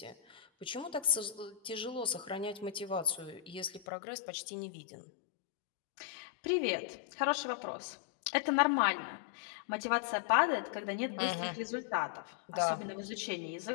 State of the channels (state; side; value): drops out; right; at 3.9 s